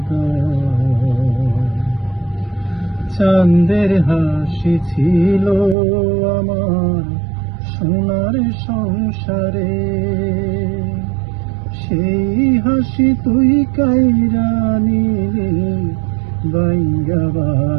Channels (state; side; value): drops out; left; at 5.8 s